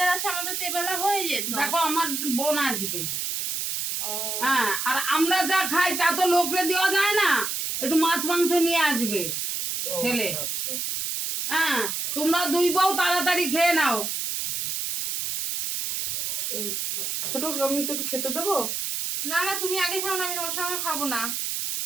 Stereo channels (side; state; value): right; noise; hiss, 2 dB below the sound